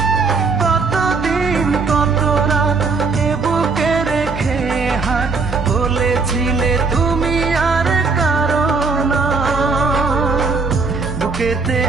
কতদিন কত রাত এ বুকে রেখে হাত বলেছিলে তুমি আর কারো না। বুকেতে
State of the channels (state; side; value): quieter; left; 4.4 dB